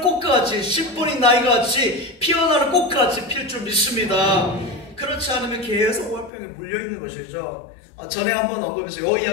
꽃같이, 심포니 나이같이 피어나는 꽃같이 필 줄 믿습니다. 그렇지 않으면 계속 오갈병에 물려있는 것이죠. 전에 한번 언급해서 이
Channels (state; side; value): drops out; right; at 6.3 s